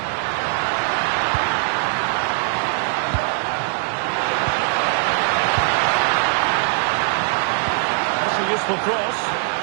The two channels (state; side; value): silent; left; 60 dB below the other